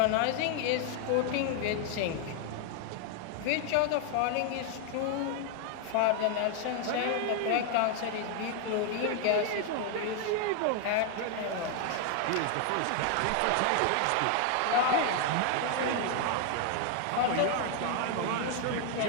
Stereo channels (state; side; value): different; both; correlation 0.00